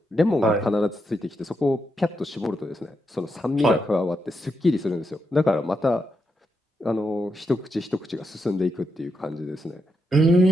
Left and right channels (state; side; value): normal; both; correlation 0.83